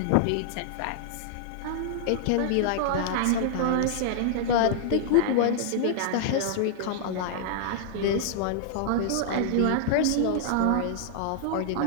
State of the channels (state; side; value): different; both; correlation -0.01